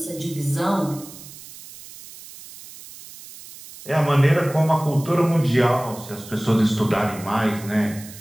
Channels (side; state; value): right; noise; hiss, 17 dB below the sound